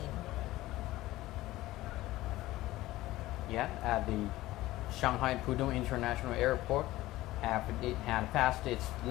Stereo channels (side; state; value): right; quieter; 17.0 dB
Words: Yeah, at the Shanghai Pudong International Airport, after it had passed its